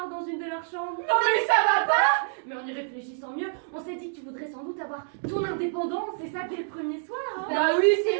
dans une de leurs chambres. Non mais ça va pas. Mais en y réfléchissant mieux, on s'est dit que tu voudrais sans doute avoir ton indépendance, c'est ça dès le premier soir hein. Bah oui,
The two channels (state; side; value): silent; left; digital silence